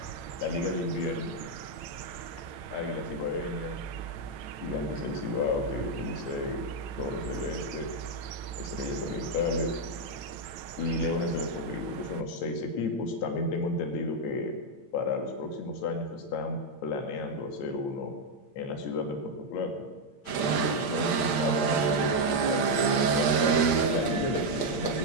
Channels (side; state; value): right; late; 8.5 ms